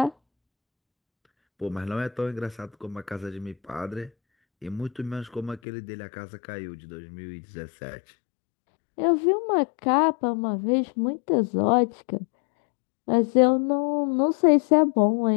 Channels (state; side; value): drops out; right; at 5.6 s